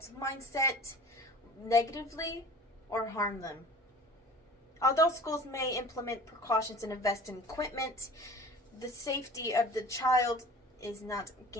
mindset negatively or harm them. Although schools may implement precautions and invest in equipment, the safety of the child is not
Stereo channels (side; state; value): both; normal; correlation 0.42